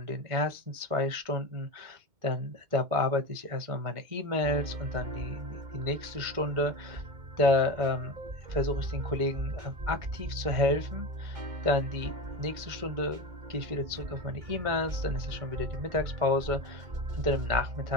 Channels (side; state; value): left; late; 2.1 ms